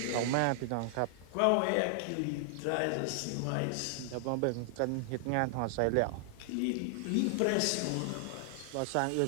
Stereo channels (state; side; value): different; both; correlation 0.00